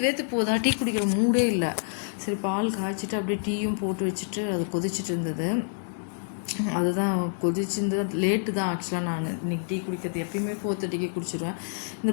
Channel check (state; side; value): silent; right; digital silence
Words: போதா, டீ குடிக்கிற மூடே இல்லை. சரி, பால் காய்ச்சிட்டு அப்படியே டீயும் போட்டு வச்சுட்டு அது கொதிச்சுட்டு இருந்தது. அதுதான் கொதிச்சிருந்தது. லேட்டு தான் ஆக்சுவலாக. நான் இன்னைக்கு டீ குடிக்கிறது எப்பயுமே 4:30க்கு குடிச்சிடுவேன்.